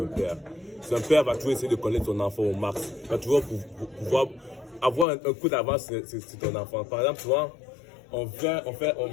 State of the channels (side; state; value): right; drops out; at 5.1 s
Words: père. C'est un père va toujours essayer de connaître son enfant au max. Il va toujours pouvoir avoir un coup d'avance sur ton enfant. Par exemple, souvent, on fait